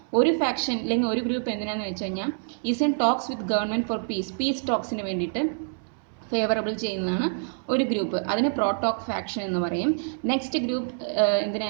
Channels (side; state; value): left; silent; 61 dB below the other